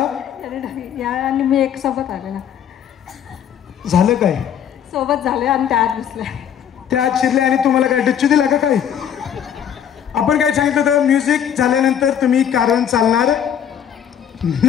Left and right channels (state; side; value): quieter; right; 9.1 dB